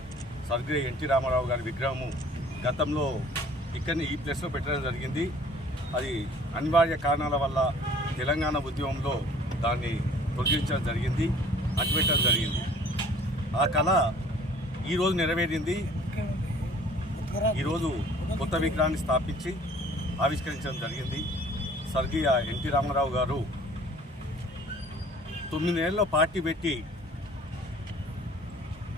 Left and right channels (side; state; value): both; normal; correlation 0.52